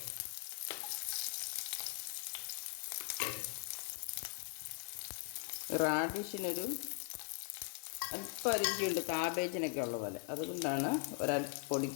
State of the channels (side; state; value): right; silent; 51 dB below the other